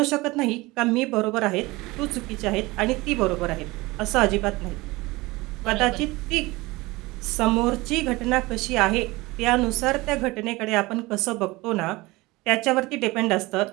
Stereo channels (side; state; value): left; quieter; 21.6 dB